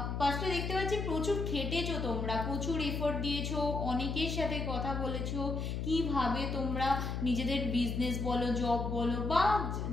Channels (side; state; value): left; noise; hum, 2 dB below the sound